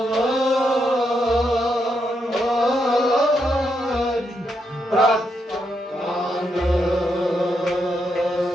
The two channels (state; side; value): normal; both; correlation 0.81